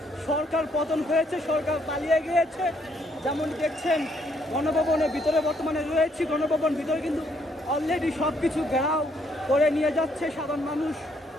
সরকার পতন হয়েছে, সরকার পালিয়ে গিয়েছে। যেমন দেখছেন গণভবনের ভিতরে বর্তমানে রয়েছে, গণভবন ভিতরে কিন্তু অলরেডি সব কিছু ঘেরাও করে নিয়ে যাচ্ছে সাধারণ মানুষ।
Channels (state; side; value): normal; both; correlation 0.70